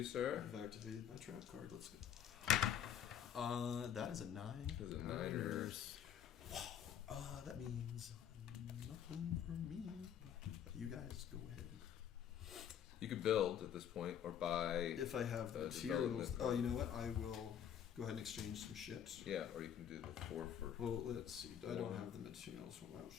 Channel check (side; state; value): right; quieter; 9.0 dB